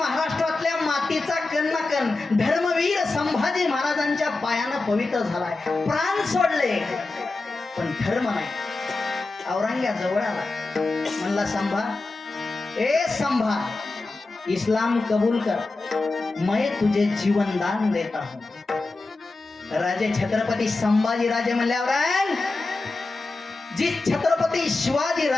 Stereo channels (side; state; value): right; quieter; 3.4 dB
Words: मातीचा कण ना कण धर्मवीर संभाजी महाराजांच्या पायानं पवित्र झालाय. प्राण सोडले पण धर्म नाही. औरंग्या जवळ आला म्हणला संभा, ए संभा इस्लाम कबूल कर, मैं तुझे जीवन दान देता हूं. राजे छत्रपती संभाजी राजे म्हणल्यावर जिस छत्रपती शिवाजी